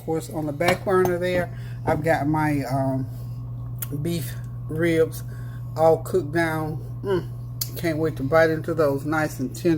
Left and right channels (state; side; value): identical; both; correlation 1.00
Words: on the back burner there, I've got my beef ribs all cooked down. Can't wait to bite into those, nice and